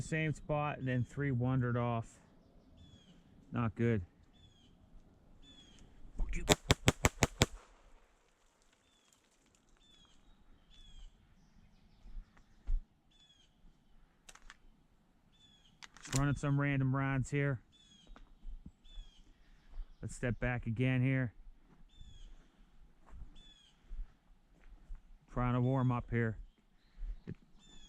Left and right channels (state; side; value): identical; both; correlation 1.00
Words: same spot and then 3 wandered off. Not good. Just running some random rounds here. Let's step back again here. Trying to warm up here.